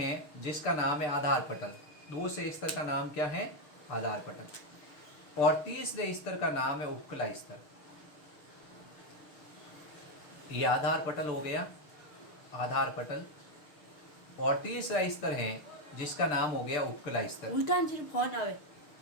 जिसका नाम है आधार पटल। दूसरे स्तर का नाम क्या है, आधार पटल। और तीसरे स्तर का नाम है उपकला स्तर। ये आधार पटल हो गया, आधार पटल। और तीसरा स्तर है जिसका नाम हो गया उपकला स्तर। उल्टा फोन आवे।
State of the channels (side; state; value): right; late; 6.5 ms